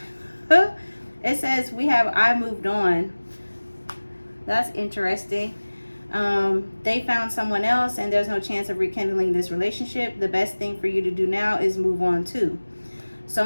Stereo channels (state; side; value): inverted; both; correlation -1.00